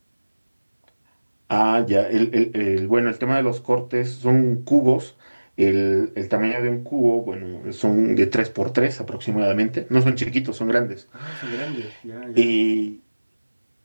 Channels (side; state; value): both; inverted; correlation -1.00